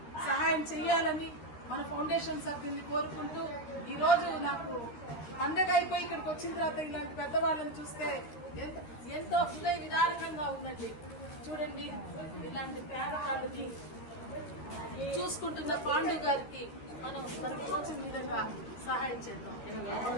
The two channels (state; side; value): late; right; 13 ms